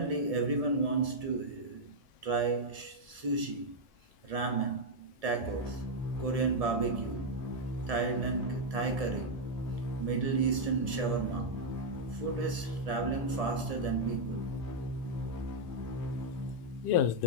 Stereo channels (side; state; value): left; late; 1.7 ms